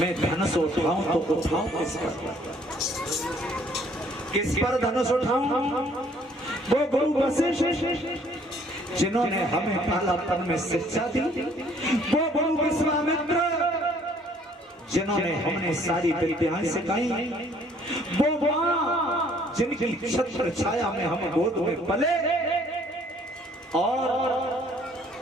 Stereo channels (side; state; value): both; normal; correlation 0.60